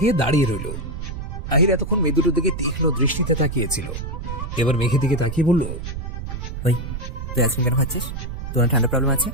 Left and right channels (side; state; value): right; noise; rumble, 6 dB below the sound